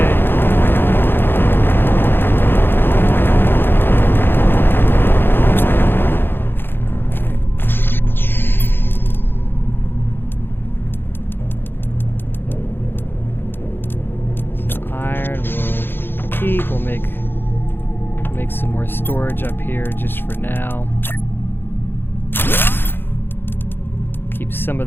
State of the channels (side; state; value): right; late; 0.10 ms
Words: We'll make some more storage up here just for now. Keep some of